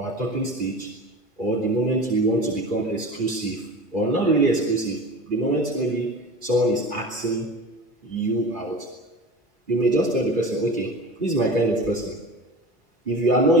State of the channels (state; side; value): normal; both; correlation 0.34